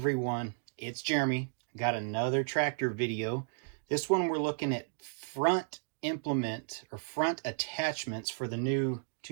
it's Jeremy. Got another tractor video. This one we're looking at front implement or front attachments for the new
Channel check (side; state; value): left; silent; digital silence